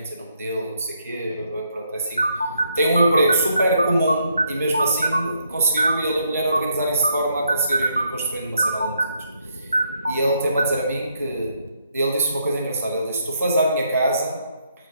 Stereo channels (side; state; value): both; inverted; correlation -0.74